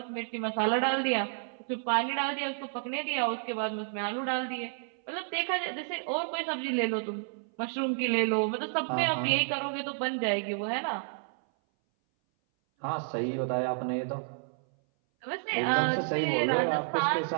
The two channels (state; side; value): silent; left; 57 dB below the other